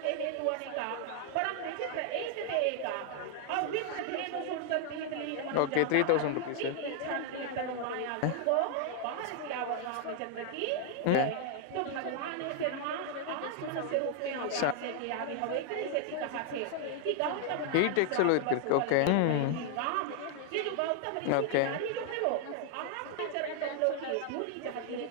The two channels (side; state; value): both; different; correlation 0.00